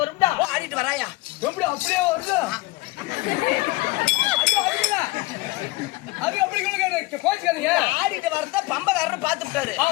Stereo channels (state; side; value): quieter; right; 21.8 dB